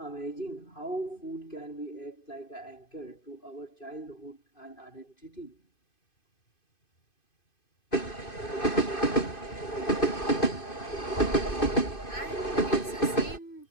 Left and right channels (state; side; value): late; right; 2.5 ms